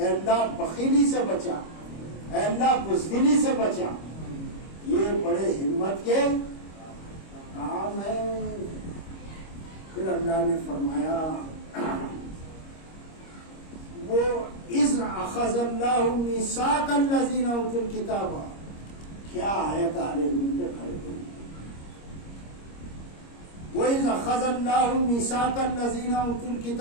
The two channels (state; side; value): late; right; 25 ms